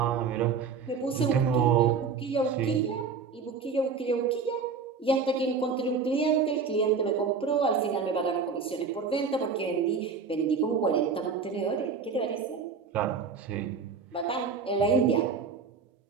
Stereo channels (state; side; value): quieter; left; 5.4 dB